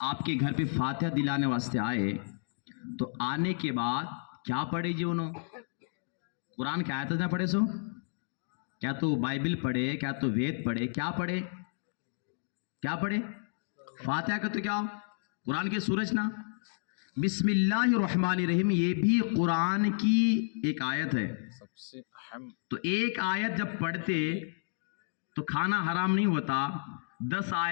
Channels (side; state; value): right; silent; digital silence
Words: आपके घर पे फातिहा दिलाने वास्ते आए, तो आने के बाद क्या पढ़े जी? उन्होंने कुरान की आयत ना पढ़े, सो क्या तो बाइबल पढ़े, क्या तो वेद पढ़े, क्या पढ़े? क्या पढ़े? फातिहा का तो क्या, कुरान की सूरज ना, बिस्मिल्लाहिर्रहमानिर्रहीम, ये भी कुरान की एक आयत है। सबसे अहम, तो एक आयत जब पढ़ते तो खाना हराम नहीं होता। 10